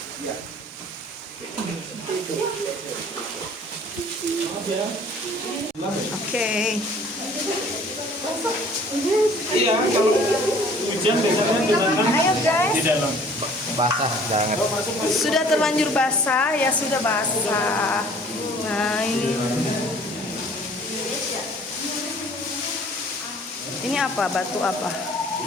Oke. Iya, kalau hujan biasanya genangan Ayo guys. di dalam. basah banget. Sudah terlanjur basah, ya sudah basah. Nah ini. Ini apa? Batu apa?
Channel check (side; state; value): both; normal; correlation 0.53